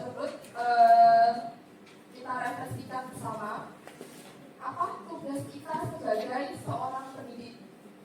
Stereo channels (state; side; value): identical; both; correlation 1.00